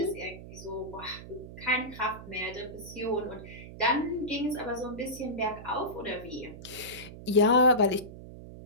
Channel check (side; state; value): right; noise; hum, 14 dB below the sound